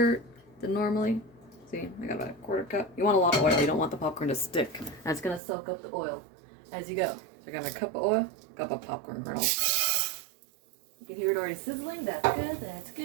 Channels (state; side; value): drops out; left; at 5.4 s